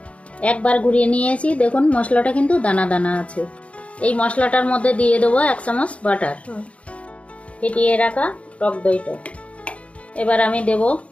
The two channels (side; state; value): right; late; 0.063 ms